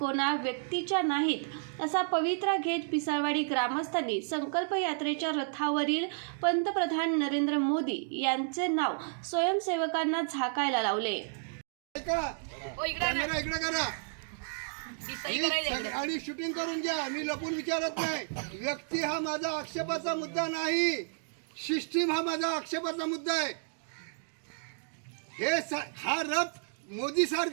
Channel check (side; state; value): left; silent; digital silence